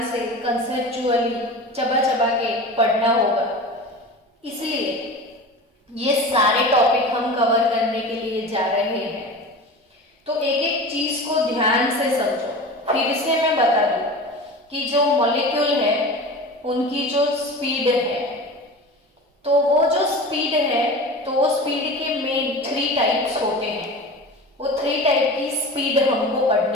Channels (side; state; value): both; normal; correlation 0.33